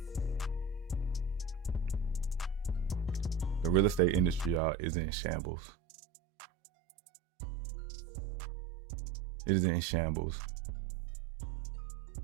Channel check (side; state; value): left; drops out; at 4.6 s